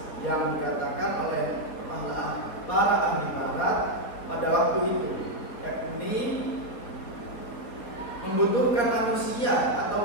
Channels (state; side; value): late; right; 4.2 ms